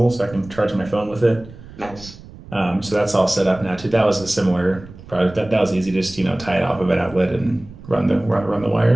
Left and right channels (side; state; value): right; noise; rumble, 18 dB below the sound